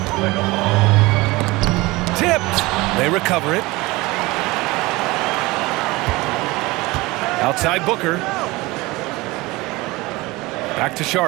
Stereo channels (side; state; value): left; quieter; 21.7 dB